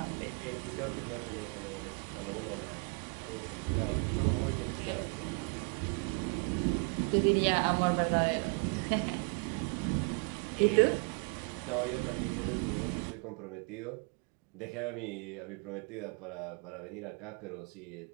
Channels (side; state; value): left; quieter; 36.7 dB